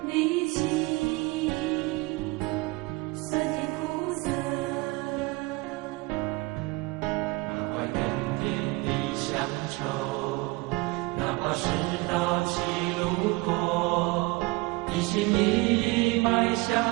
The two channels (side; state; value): left; quieter; 24.2 dB